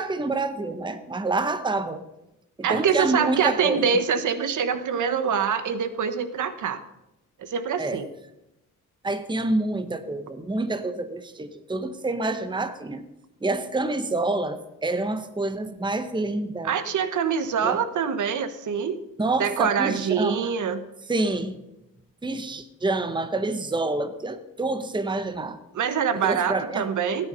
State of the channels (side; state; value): left; quieter; 4.3 dB